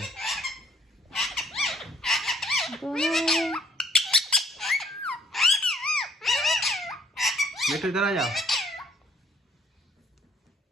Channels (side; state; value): both; normal; correlation 0.63